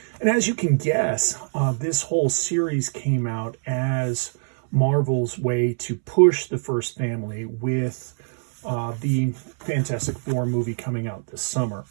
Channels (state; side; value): silent; left; 63 dB below the other